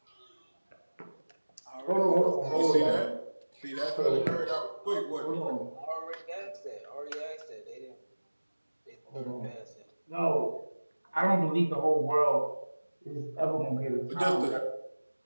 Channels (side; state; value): both; inverted; correlation -1.00